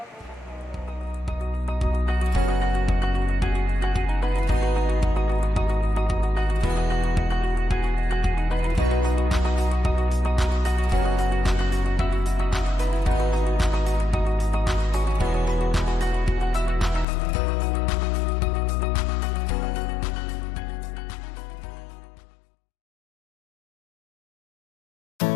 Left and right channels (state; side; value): drops out; right; at 17.1 s